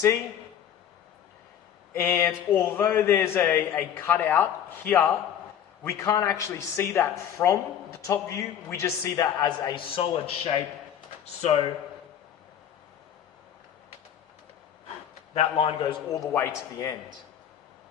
And although there's a cutout here, we can't actually see that from the top view. We just see that as a solid shape. So that line goes all the way to the end.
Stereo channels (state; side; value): quieter; right; 9.5 dB